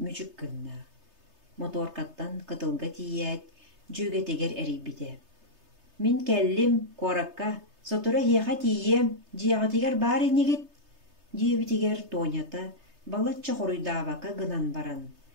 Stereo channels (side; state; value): left; late; 3.3 ms